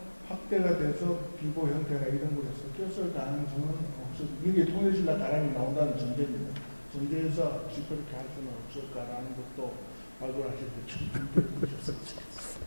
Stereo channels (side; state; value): both; inverted; correlation -1.00